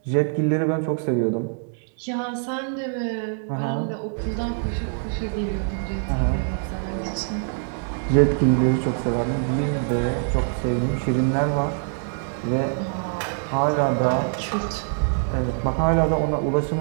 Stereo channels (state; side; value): silent; left; 60 dB below the other